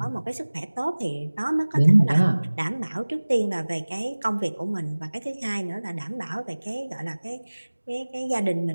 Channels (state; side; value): inverted; both; correlation -1.00